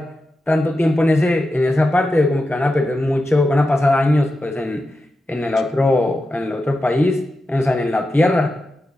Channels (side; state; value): both; normal; correlation 0.90